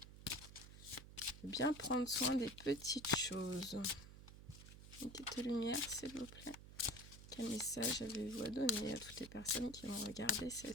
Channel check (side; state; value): right; noise; hum, 15 dB below the sound